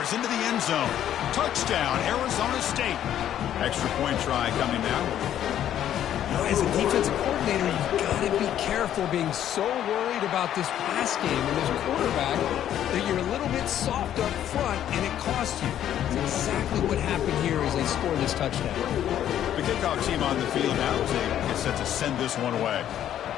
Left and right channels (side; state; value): right; quieter; 10.9 dB